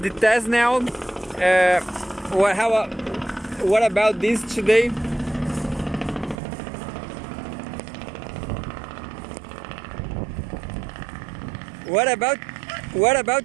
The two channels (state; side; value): drops out; left; at 6.4 s